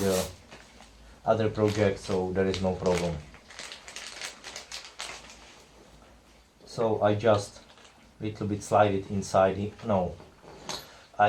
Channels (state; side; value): identical; both; correlation 1.00